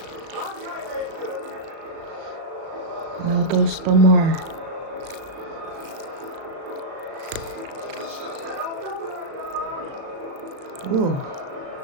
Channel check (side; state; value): left; late; 36 ms